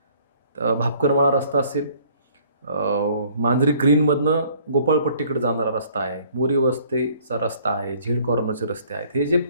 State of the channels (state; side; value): inverted; both; correlation -0.58